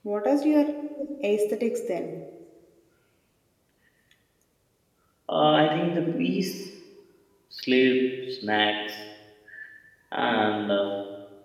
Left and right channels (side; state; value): both; identical; correlation 1.00